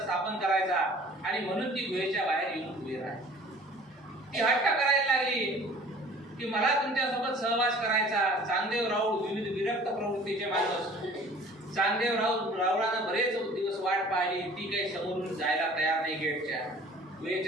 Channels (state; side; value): normal; both; correlation 0.49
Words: करायचा आणि म्हणून ती गुहेच्या बाहेर येऊन उभी राहिली. ती हट्ट करायला लागली की मला तुमच्यासोबत सहवास करायचा. चांगदेव राऊळ विविध विरक्त प्रवृत्तीचे माणूस. चांगदेव रावळानं बरेच दिवस वाट पाहिली. ती काही समोरून जायला तयार नाही. गेटच्या